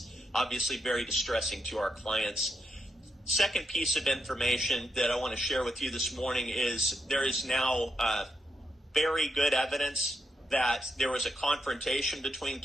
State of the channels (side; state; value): both; normal; correlation 0.81